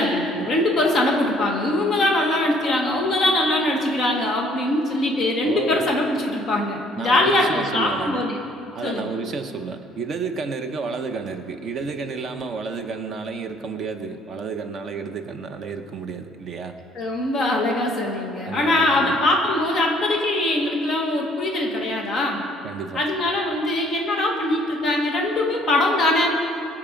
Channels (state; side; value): normal; both; correlation 0.60